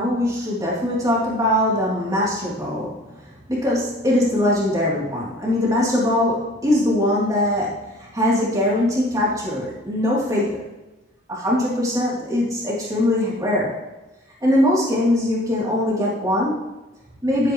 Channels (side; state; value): both; normal; correlation 0.50